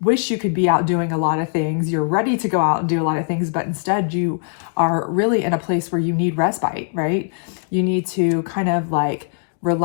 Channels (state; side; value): silent; right; digital silence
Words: wish you could be out doing a lot of things. You're ready to go out and do a lot of things, but instead you are really in a place where you need respite, right? You need to kind of like